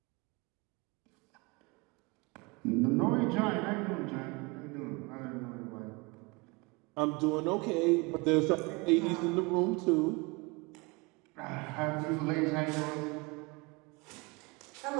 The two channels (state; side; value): quieter; left; 27.1 dB